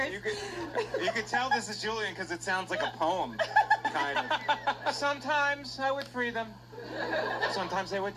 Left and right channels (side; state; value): both; identical; correlation 1.00